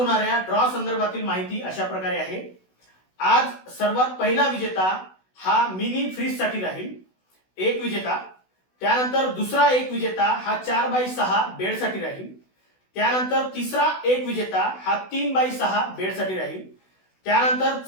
ड्रॉ संदर्भातील माहिती अशा प्रकारे आहे. आज सर्वात पहिला विजेता हा मिनी फ्रीज साठी राहील, एक विजेता. त्यानंतर दुसरा एक विजेता हा 4x6 बेड साठी राहील. त्यानंतर तिसरा एक विजेता हा 3x6 बेड साठी राहील. त्यानंतर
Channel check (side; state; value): right; late; 16 ms